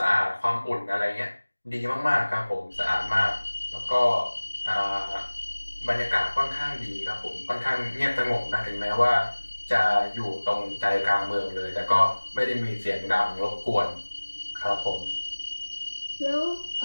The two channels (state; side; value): inverted; both; correlation -1.00